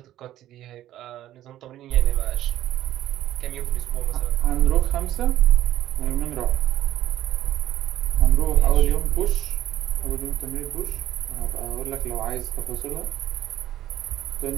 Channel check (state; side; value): quieter; left; 13.2 dB